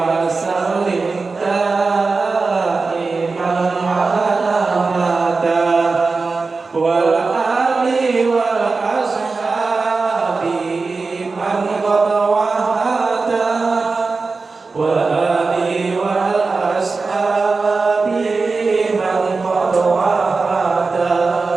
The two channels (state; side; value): quieter; left; 4.1 dB